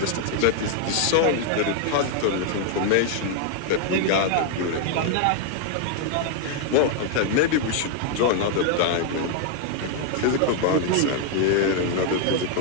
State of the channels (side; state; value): both; different; correlation 0.00